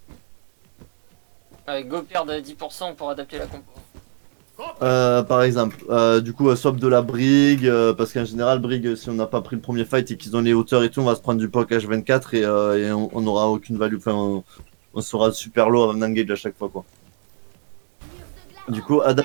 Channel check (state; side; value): silent; left; digital silence